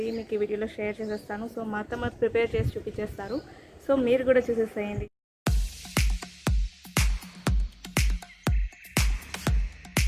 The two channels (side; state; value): both; identical; correlation 1.00